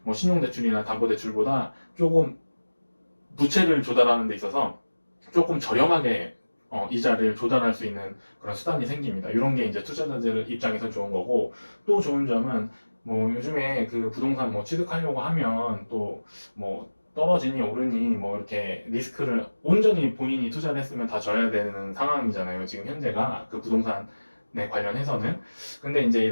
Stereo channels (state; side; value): inverted; both; correlation -1.00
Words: 뭐 신용대출이나 담보대출보다 조금 부채를 조달하는 데 있어서 조금 저렴하게 이자를 조달할 수 있는 그런 수단이 생깁니다. 이런 게 이제 투자자들 입장에서 좋은 거고, 또 좋은 점은 뭐 요즘에 그 부동산 뭐 취득하려고 하면 또 뭐 떨어지니 오르니 뭐 이렇게 리스크를 온전히 본인이 투자를 했으면 다 져야 되는 상황이잖아요. 지금 현재가 그 부동산에 관련해서는. 근데 이제